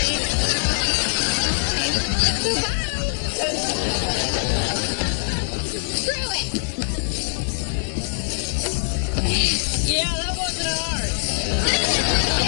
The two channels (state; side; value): silent; right; digital silence